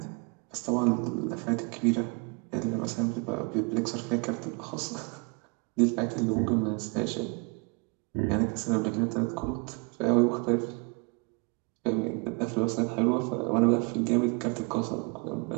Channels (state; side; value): quieter; left; 32.6 dB